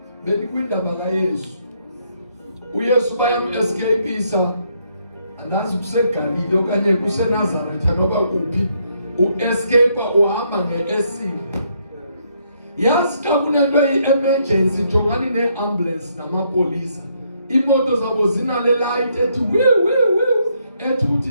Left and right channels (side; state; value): both; inverted; correlation -0.73